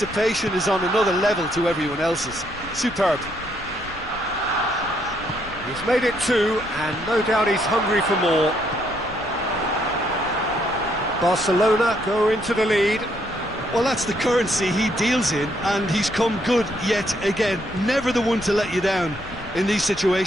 is on another level to everyone else's. Superb. He's made it two, and no doubt he's hungry for more. Barcelona go into the lead. Well, that's the currency he deals in, and he's come good yet again. Never the one to let you down in these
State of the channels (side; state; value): left; noise; rumble, 18 dB below the sound